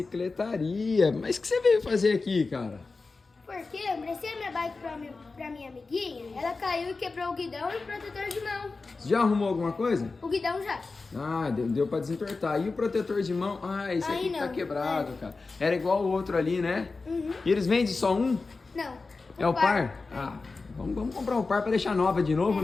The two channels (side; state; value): right; quieter; 3.9 dB